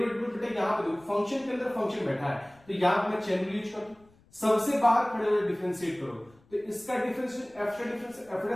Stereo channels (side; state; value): left; noise; rumble, 29 dB below the sound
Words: बेटा यहां पे देखो फंक्शन के अंदर फंक्शन बैठा है, तो यहां पे मैं चेन रूल यूज कर दूं, सबसे बाहर खड़े हुए डिफरेंशिएट करो, तो इसका डिफरेंशिएशन f का डिफरेंशिएशन f